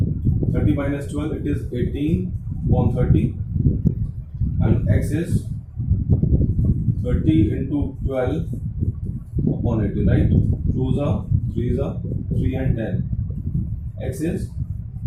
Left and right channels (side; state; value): both; identical; correlation 1.00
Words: 30 minus 12, it is 18 upon 30, and X is 30 into 12 upon 80, right? 2s are 3s are 3 and 10. X is